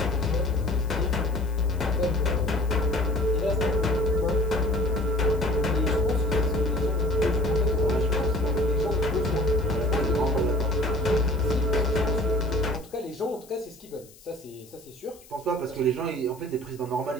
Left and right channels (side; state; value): left; noise; hiss, 24 dB below the sound